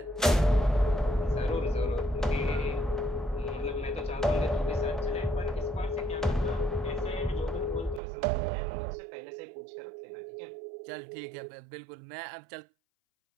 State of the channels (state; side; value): drops out; left; at 8.0 s